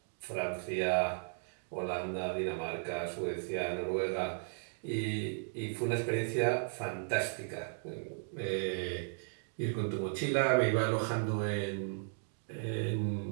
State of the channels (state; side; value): silent; left; digital silence